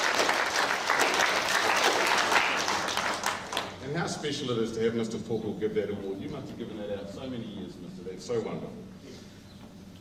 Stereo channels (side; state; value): both; identical; correlation 1.00